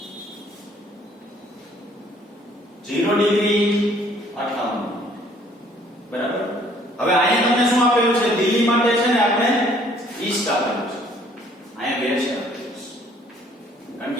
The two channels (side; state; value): both; normal; correlation 0.60